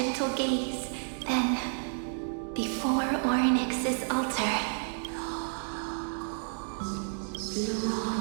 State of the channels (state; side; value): silent; left; digital silence